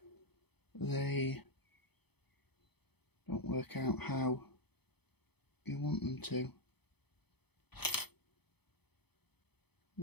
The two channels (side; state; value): right; late; 0.98 ms